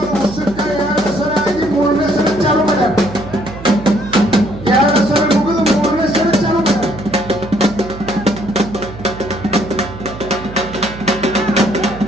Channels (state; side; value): noise; right; hum, 13 dB below the sound